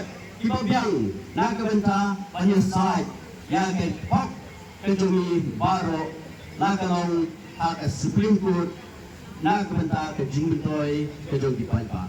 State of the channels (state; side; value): identical; both; correlation 1.00